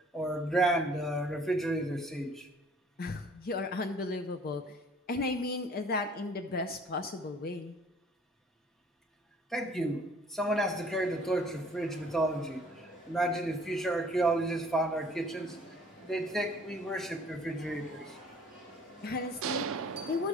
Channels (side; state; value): both; normal; correlation 0.55